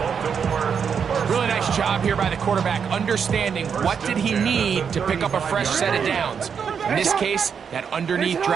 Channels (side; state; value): left; quieter; 6.8 dB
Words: Really nice job here by the quarterback, understanding what did he need to pick up a fresh set of downs. In this case, that underneath